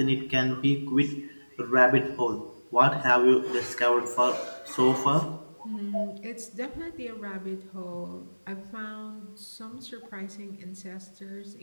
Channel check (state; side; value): inverted; both; correlation -1.00